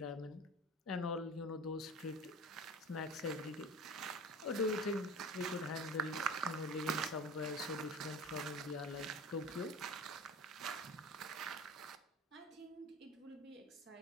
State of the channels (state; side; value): normal; both; correlation 0.38